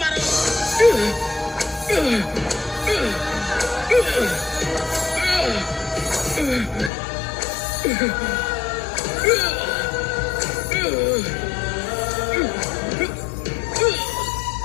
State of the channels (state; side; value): drops out; right; at 6.9 s